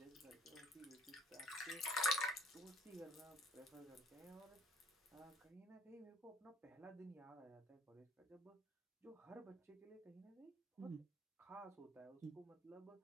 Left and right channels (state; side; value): normal; both; correlation 0.58